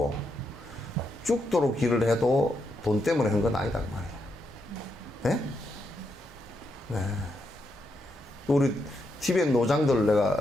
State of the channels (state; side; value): normal; both; correlation 0.82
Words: 죽도록 일을 해도 돈 때문에 한 건 아니다 그 말이야. 네? 네. 우리 티벳 노장들